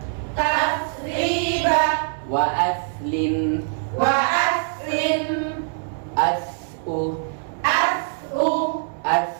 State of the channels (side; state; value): left; silent; digital silence